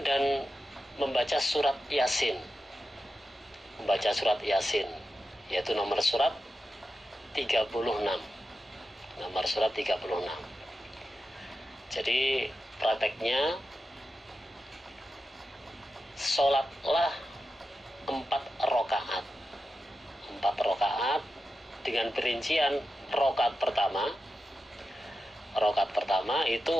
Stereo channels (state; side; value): normal; both; correlation 0.90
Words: dan membaca surat Yasin. Membaca surat Yasin yaitu nomor surat 36. Nomor surat 36. Jadi prakteknya sholatlah 4 rakaat. 4 rakaat dengan perincian rakaat pertama